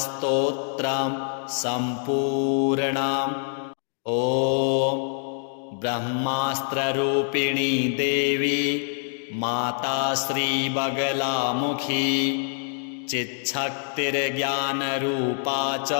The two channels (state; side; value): silent; right; 62 dB below the other